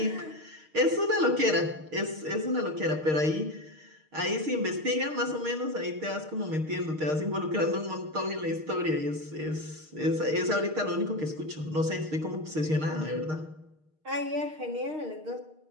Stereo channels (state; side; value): late; left; 6.5 ms